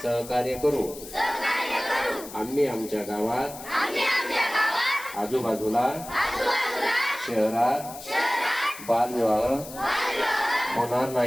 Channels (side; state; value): left; noise; hiss, 14 dB below the sound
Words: सहकार्य करू. आम्ही आमच्या गावात आजूबाजूला शहरात बालविवाह होणार